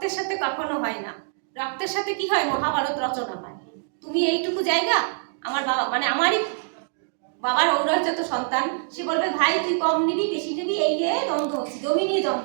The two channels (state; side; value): silent; left; digital silence